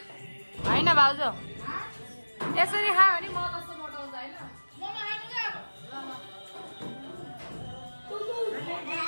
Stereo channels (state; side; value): inverted; both; correlation -1.00